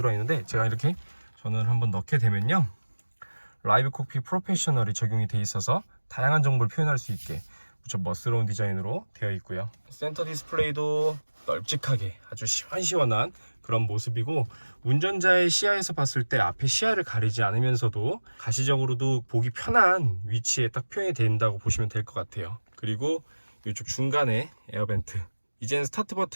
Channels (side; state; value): both; inverted; correlation -1.00